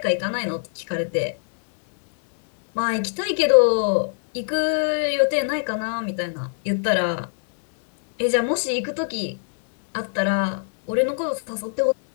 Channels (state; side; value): silent; right; 64 dB below the other